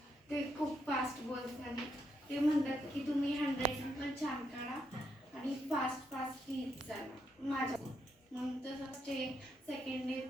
ते खूप फास्ट बोलतात. ते म्हणतात की तुम्ही हँडरायटिंग पण छान काढा आणि फास्ट फास्ट लिहित जाणार माझ्या. मग तसंच ते सेकंड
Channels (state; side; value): normal; both; correlation 0.79